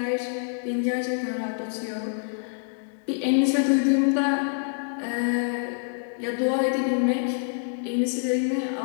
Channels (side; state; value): right; silent; digital silence